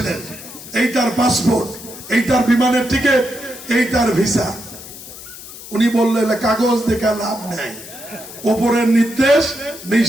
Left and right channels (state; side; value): noise; left; hiss, 15 dB below the sound